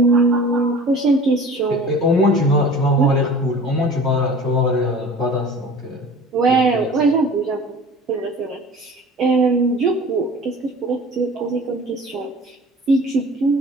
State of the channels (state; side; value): normal; both; correlation 0.42